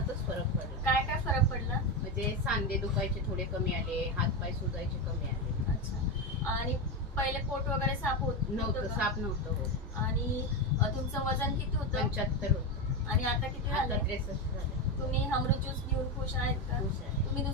फरक पडला. काय काय फरक पडला? म्हणजे सांधे दुखायचे थोडे कमी आले, हातपाय सुजायचे कमी आले. अच्छा, आणि पहिले पोट वगैरे साफ होत नव्हतं, का? साप नव्हतं होत. आणि तुमचं वजन किती होतं? 75 होतं. आणि आता किती आता झालं? 63 झालं. तुम्ही अमृत ज्यूस घेऊन खुश आहेत का? खुश आहे. तुम्ही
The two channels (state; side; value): normal; both; correlation 0.13